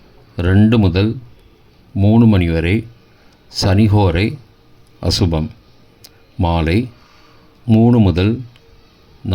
2 முதல் 3 மணி வரை சனிஹோரை அசுபம். மாலை 3 முதல்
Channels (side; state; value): both; identical; correlation 1.00